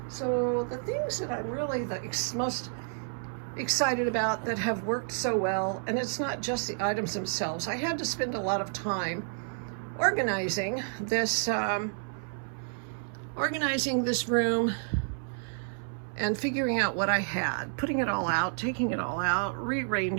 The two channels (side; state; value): left; silent; 58 dB below the other